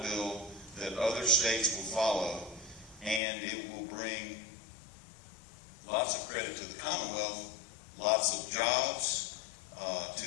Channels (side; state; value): right; drops out; at 3.2 s